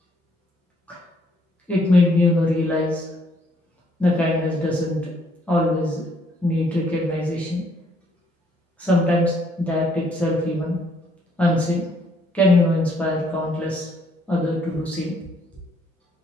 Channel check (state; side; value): normal; both; correlation 0.68